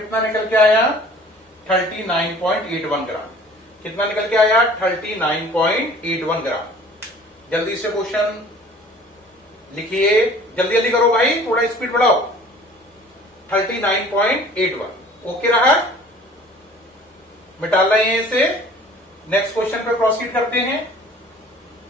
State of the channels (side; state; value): both; normal; correlation 0.49